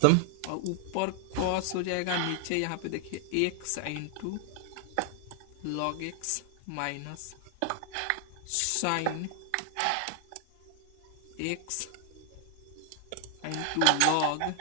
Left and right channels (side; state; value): both; different; correlation 0.00